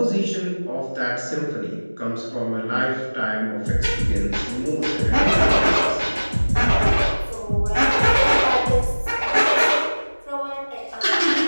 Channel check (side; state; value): both; inverted; correlation -1.00